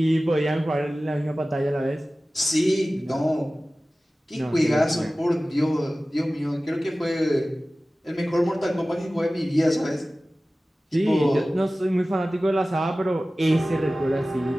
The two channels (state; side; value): normal; both; correlation 0.97